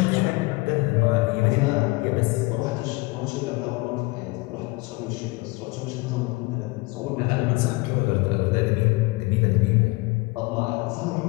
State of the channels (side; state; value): right; quieter; 24.1 dB